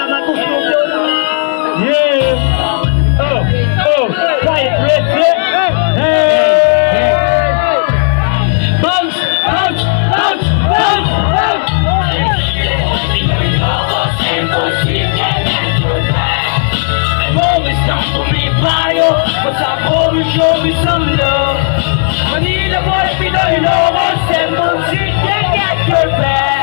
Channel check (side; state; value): right; silent; digital silence